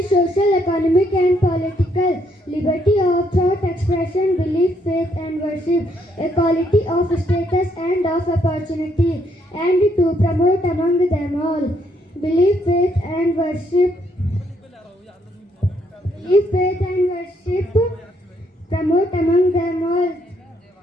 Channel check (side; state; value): both; normal; correlation 0.72